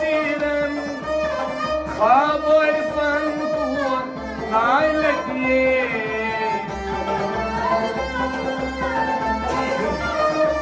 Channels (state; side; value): identical; both; correlation 1.00